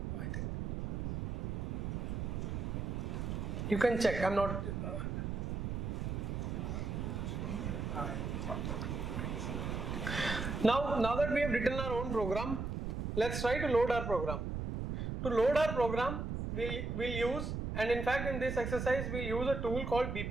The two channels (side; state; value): right; noise; rumble, 3 dB below the sound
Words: I think. You can check. I'm not. Now that we have written our own program, let's try to load our program. To load our program, we'll use, and in fact in this exercise we'll use a tool called